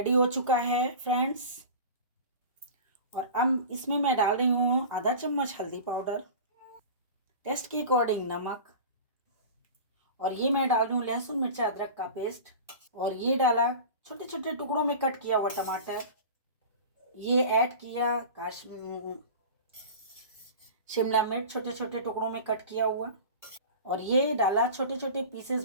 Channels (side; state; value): both; inverted; correlation -0.34